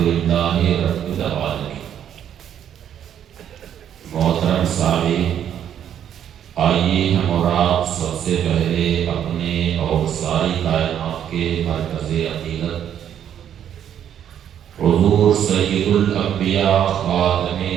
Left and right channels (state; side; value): quieter; left; 9.7 dB